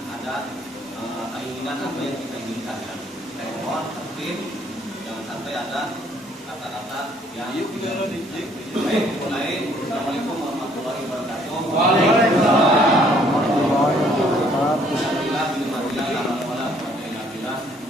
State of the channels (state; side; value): normal; both; correlation 0.63